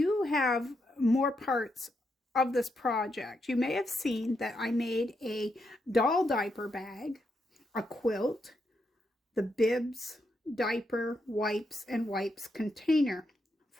have more parts of this project. You may have seen that I made a doll diaper bag, a quilt, the bibs, diaper, wipes, and wipes container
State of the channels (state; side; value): normal; both; correlation 0.81